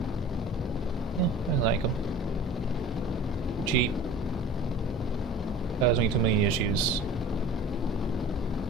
yeah, I like them. Cheap. Cause me too many issues.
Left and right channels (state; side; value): normal; both; correlation 0.42